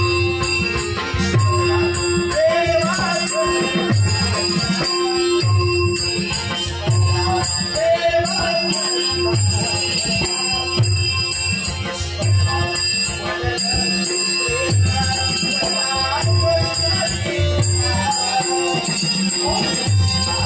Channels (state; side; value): identical; both; correlation 1.00